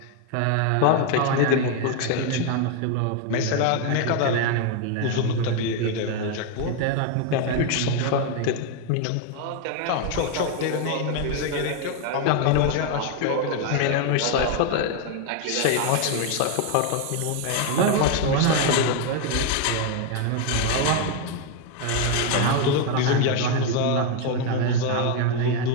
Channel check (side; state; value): both; different; correlation 0.01